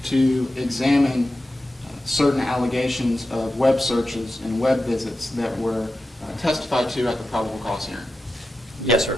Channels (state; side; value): normal; both; correlation 0.91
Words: to examine certain allegations of web searches and web visits that were testified to at the probable cause hearing? Yes,